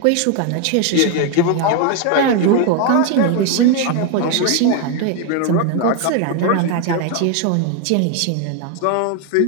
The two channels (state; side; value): different; both; correlation 0.01